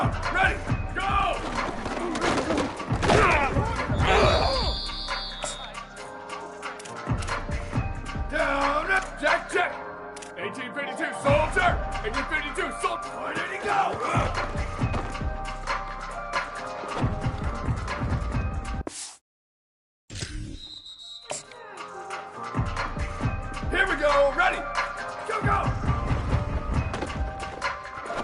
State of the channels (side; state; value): both; identical; correlation 1.00